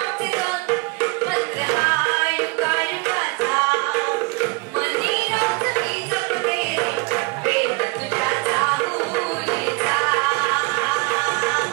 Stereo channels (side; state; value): left; quieter; 27.2 dB